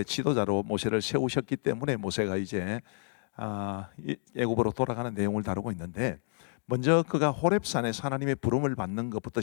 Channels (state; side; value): silent; right; digital silence